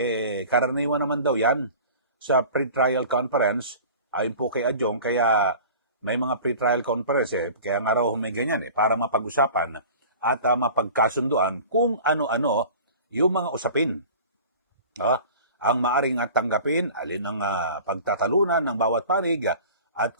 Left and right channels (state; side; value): inverted; both; correlation -0.41